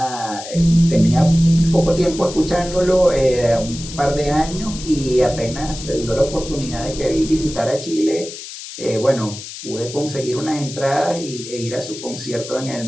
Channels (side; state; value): left; noise; hiss, 12 dB below the sound